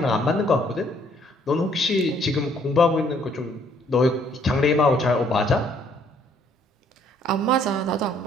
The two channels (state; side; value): normal; both; correlation 0.64